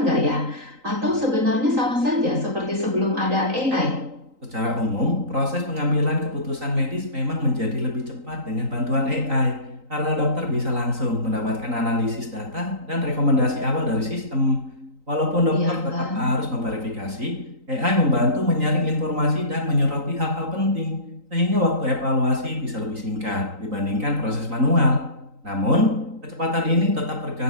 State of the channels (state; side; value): late; left; 3.9 ms